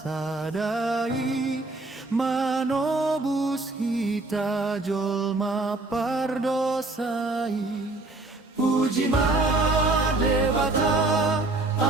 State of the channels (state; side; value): quieter; left; 3.1 dB